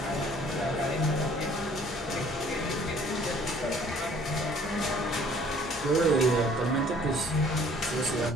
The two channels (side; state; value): both; normal; correlation 0.56